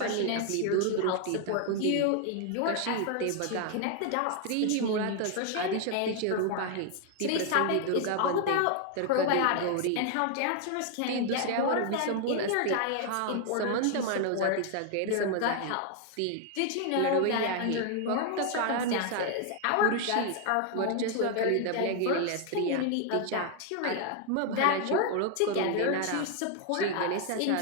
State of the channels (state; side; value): different; both; correlation 0.00